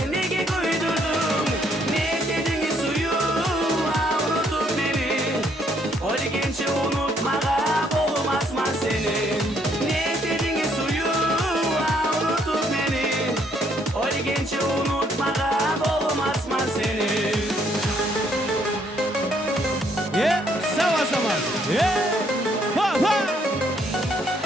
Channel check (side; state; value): both; normal; correlation 0.69